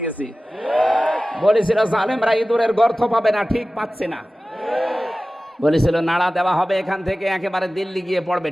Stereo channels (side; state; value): both; normal; correlation 0.96